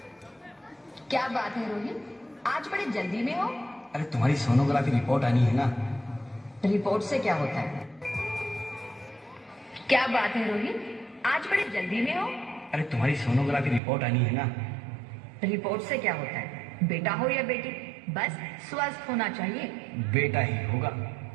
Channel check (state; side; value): drops out; left; at 13.8 s